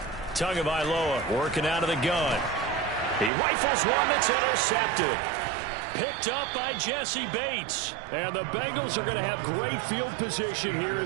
Tagovailoa working out of the gun. He rifles one that's intercepted. Picked up by Jesse Bates. And the Bengals are going to have great field position here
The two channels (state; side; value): drops out; left; at 3.3 s